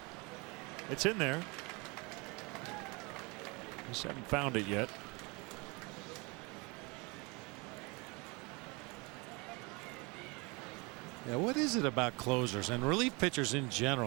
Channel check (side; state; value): left; quieter; 27.8 dB